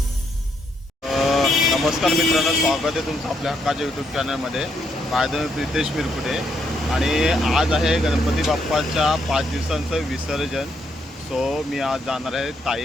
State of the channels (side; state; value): both; normal; correlation 0.76